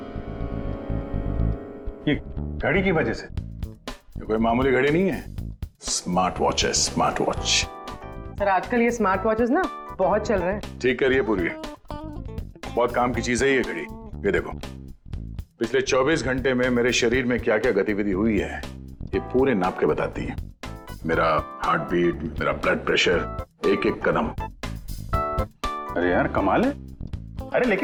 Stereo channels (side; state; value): both; identical; correlation 1.00